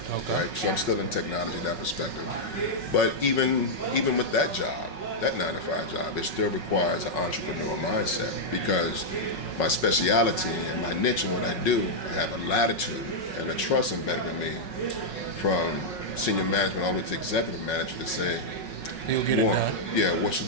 right? So I'm still in technology in that perspective. But even with that job, that 9-to-5 job, it still requires an entrepreneurial mindset because my speciality and my niche and what I do, I have a latitude and a trust embedded in me from senior management all the way to executive manager to say, He'll get it done. yeah, what should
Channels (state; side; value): late; right; 5.4 ms